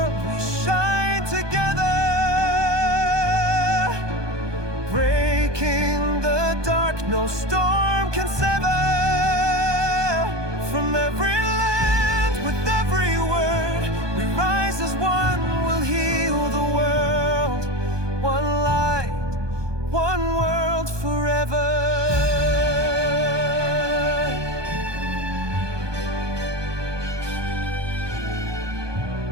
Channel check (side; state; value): left; late; 1.2 ms